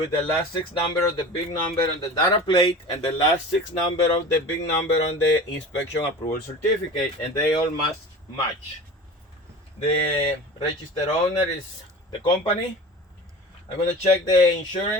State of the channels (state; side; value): normal; both; correlation 0.36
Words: the last 6 number of the big number on the data plate and the last 6 number of the big number on the inspection approval certificate, and they all must match. The registered owner is the company. I'm gonna check the